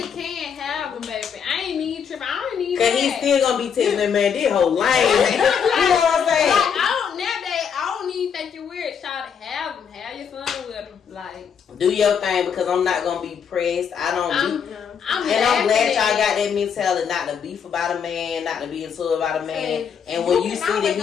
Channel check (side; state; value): right; quieter; 7.2 dB